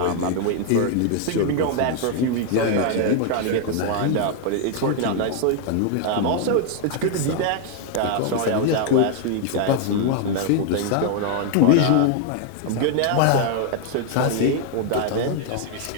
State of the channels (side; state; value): both; different; correlation 0.00